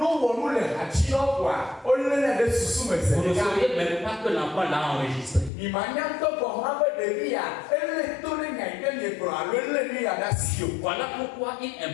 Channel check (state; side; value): drops out; right; at 5.5 s